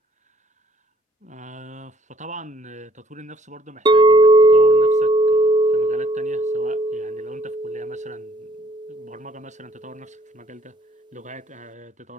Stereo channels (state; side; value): normal; both; correlation 0.62